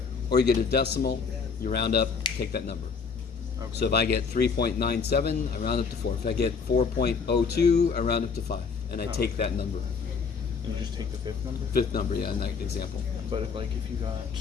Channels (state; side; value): quieter; right; 5.5 dB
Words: or you get a decimal, you round up, take that number. Okay. So if I get 3.97, I round up to 4. If I get 4.02, I round up to 5, and I take that number. And you just take the fifth number? Fifth number, yeah, in that example. But if you got